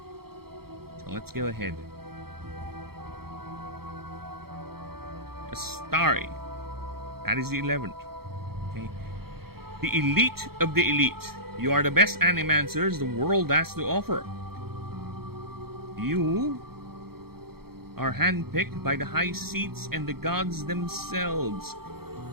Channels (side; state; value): left; late; 0.95 ms